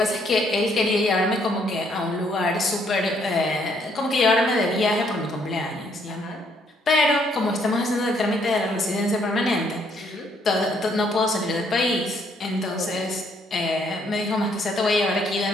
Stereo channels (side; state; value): both; normal; correlation 0.69